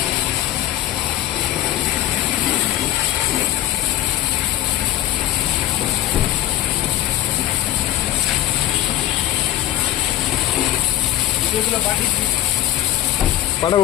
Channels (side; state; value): right; quieter; 13.6 dB